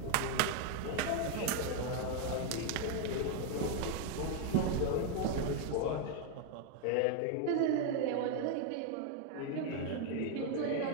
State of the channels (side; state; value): both; different; correlation 0.01